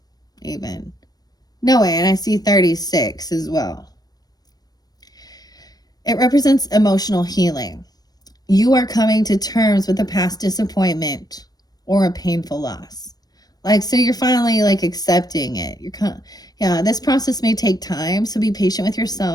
even. No way, and I see 36 as well. It represents emotional healing. You are coming to terms with a past disappointment or a painful loss. Like, so you're finally like accepting it. Yeah, this process may take time, so be patient with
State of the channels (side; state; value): right; late; 0.19 ms